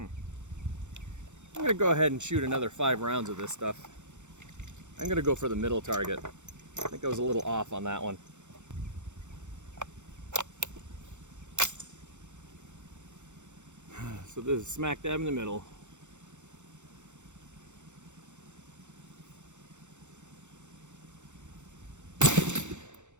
I'm gonna go ahead and shoot another 5 rounds of this stuff. I'm gonna go for the middle target. I think I was a little off on that one. So this is smack dab in the middle.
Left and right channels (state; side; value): late; left; 0.84 ms